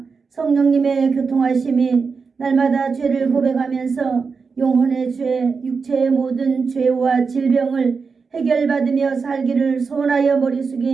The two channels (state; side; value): quieter; left; 5.1 dB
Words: 성령님의 교통하심이 날마다 죄를 고백하면서 영혼의 죄, 육체의 모든 죄와 질병을 해결받으며 살기를 소원하여 머리